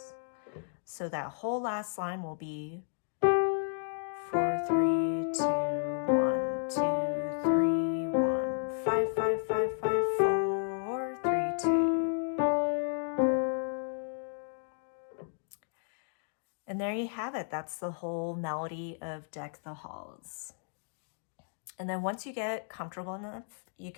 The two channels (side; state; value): right; silent; digital silence